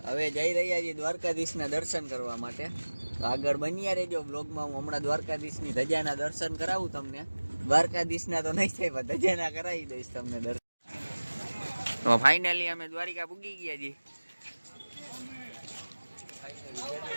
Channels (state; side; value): inverted; both; correlation -1.00